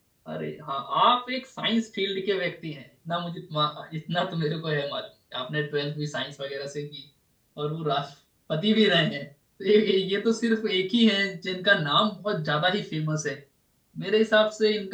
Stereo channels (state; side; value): identical; both; correlation 1.00